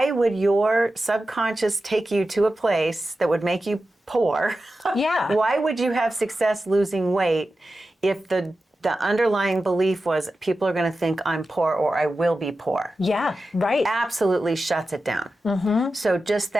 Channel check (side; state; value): both; normal; correlation 0.93